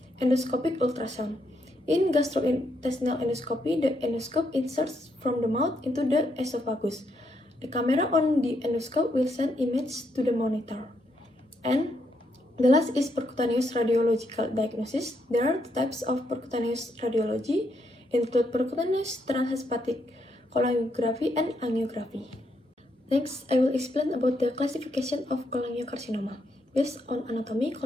endoscopic ultrasound. In gastrointestinal endoscopy, the endoscope inserts from the mouth into the esophagus. The camera on the endoscope will send image to the monitor. And the last is percutaneous radiological diagnosis. There are two types of percutaneous radiology, include percutaneous transhepatic cholangography and angiography. Next, I will explain about the classification of cholangiocarcinoma. Based on anatomy,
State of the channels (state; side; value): normal; both; correlation 0.77